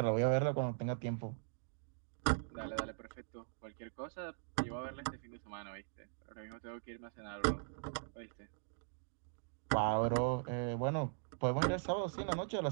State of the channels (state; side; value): silent; left; digital silence